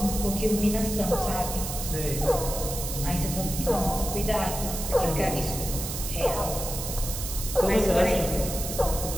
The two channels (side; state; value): right; noise; hiss, 6 dB below the sound